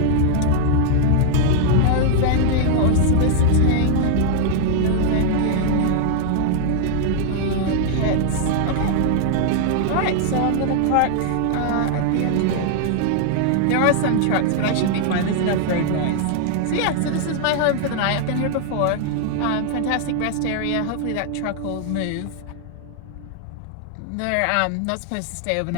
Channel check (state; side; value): different; both; correlation 0.00